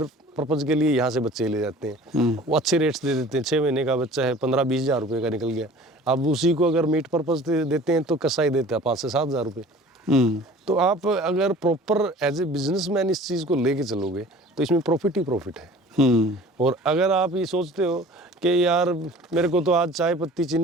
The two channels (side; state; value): both; normal; correlation 0.45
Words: पर्पज़ के लिए यहाँ से बच्चे ले जाते हैं, वो अच्छे रेट्स दे देते हैं। 6 महीने का बच्चा है 15-20 हज़ार रुपये का निकल गया, अब उसी को अगर मीट पर्पज़ देते हैं तो कसाई देता है 5 से 7 हज़ार रुपये। तो आप अगर प्रॉपर एज ए बिजनेसमैन इस चीज़ को लेके चलोगे तो इसमें प्रॉफिट ही प्रॉफिट है। और अगर आप ये सोचते हो कि यार मेरे को तो आज चाय पत्ती